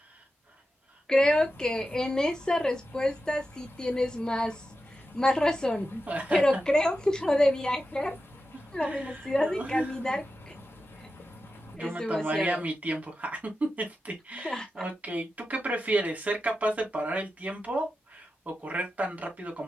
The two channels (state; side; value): normal; both; correlation 0.91